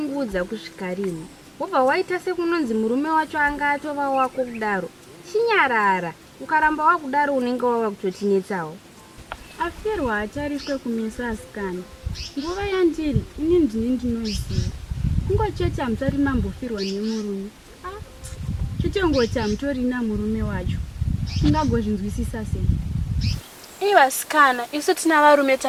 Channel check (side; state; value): both; identical; correlation 1.00